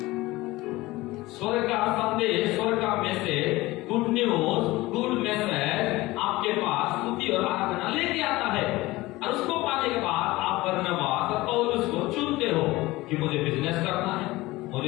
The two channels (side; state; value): right; quieter; 19.6 dB